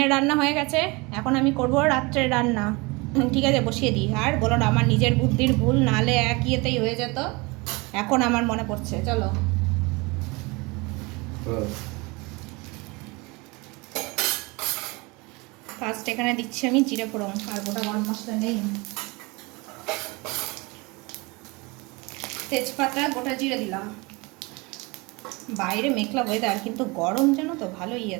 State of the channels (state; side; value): quieter; left; 26.0 dB